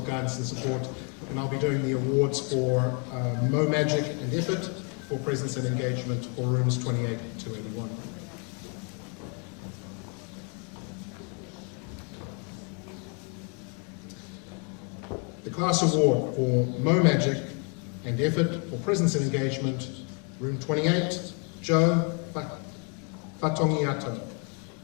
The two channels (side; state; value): right; quieter; 37.5 dB